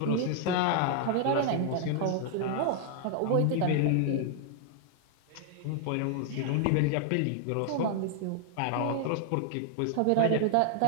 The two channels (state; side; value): different; both; correlation 0.00